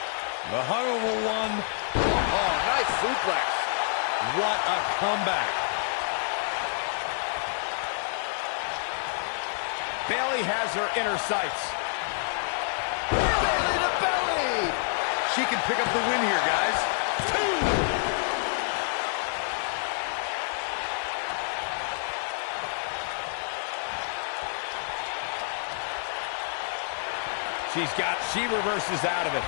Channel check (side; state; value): right; silent; digital silence